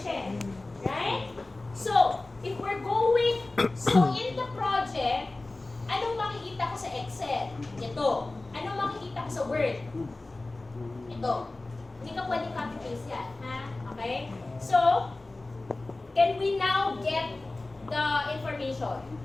Right? So, if we're going, in the project, anong makikita ko sa Excel? Ito. Anong makikita ko sa Word? Ito. Hindi ka pwedeng copy-paste yan. Ha? Okay? So, can we now get the information?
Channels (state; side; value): quieter; right; 3.0 dB